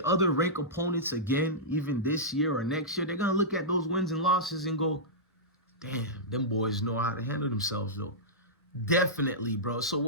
other ranked opponents again, even this year or next year, they're going to look at those wins and losses and go, damn, them boys know how to handle themselves, though. Definitely, bro. So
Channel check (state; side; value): normal; both; correlation -0.14